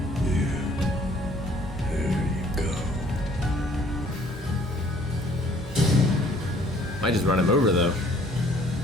There you go. Might just run him over though.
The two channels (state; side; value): normal; both; correlation 0.59